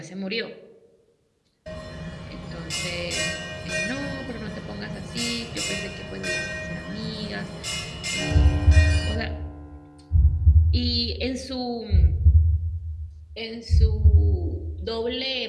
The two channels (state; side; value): identical; both; correlation 1.00